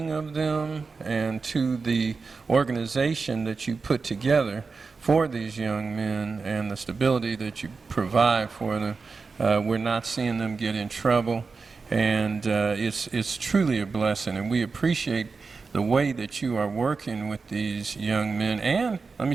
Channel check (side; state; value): left; quieter; 4.5 dB